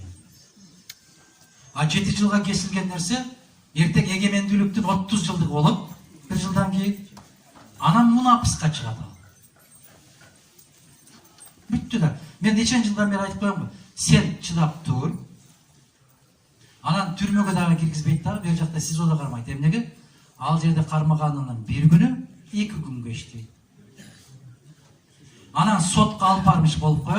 А 7 жылга кесилген нерсе эртең эгемендүүлүктүн 30 жылдыгы болот. 1 жылдан кийин анан мунапыска чыгат ал. Бүттү да. Мен нечен жылдан бери айтып коем го. Сен чыдап тур. Анан түрмөгө дагы киргизбейт дагы, бер жакта СИЗОдо кармайт. Эмнеге? Ал жерде кармаганынын 1 күнү 2 күнгө иштейт. Анан сотко алып бармыш болуп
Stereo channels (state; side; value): identical; both; correlation 1.00